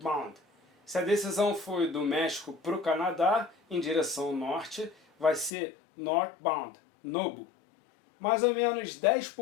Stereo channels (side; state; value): right; drops out; at 5.6 s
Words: Se a decisão foi do México para o Canadá, em direção norte, vai ser Northbound, NOBO. Mais ou menos